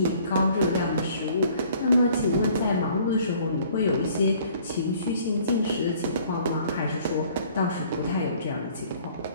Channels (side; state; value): both; inverted; correlation -0.56